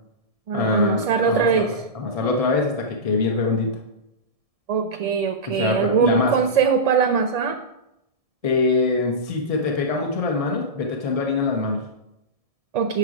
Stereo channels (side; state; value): left; late; 1.7 ms